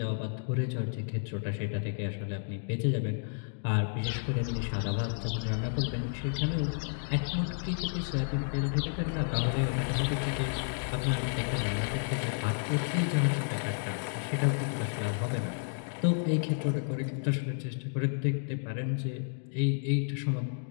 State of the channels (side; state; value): right; silent; digital silence